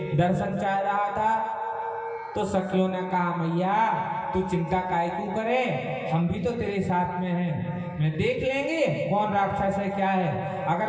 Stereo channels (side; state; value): both; identical; correlation 1.00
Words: दर्शन चाह रहा था। तो सखियों ने कहा मैया तू चिंता काहे क्यों करे, हम भी तो तेरे साथ में हैं, मैं देख लेंगे कौन राक्षस है क्या है।